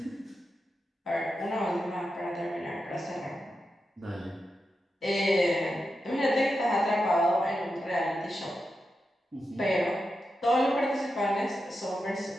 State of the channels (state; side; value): normal; both; correlation 0.89